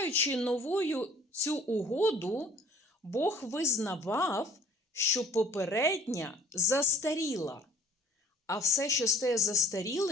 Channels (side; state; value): both; normal; correlation 0.52